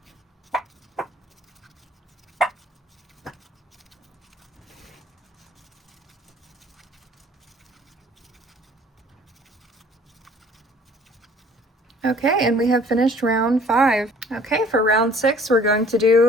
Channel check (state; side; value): normal; both; correlation 0.54